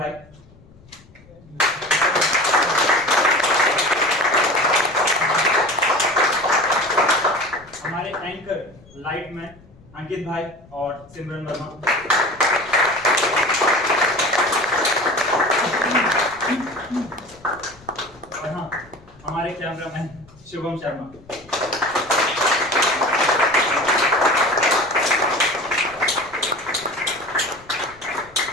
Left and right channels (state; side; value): noise; left; rumble, 25 dB below the sound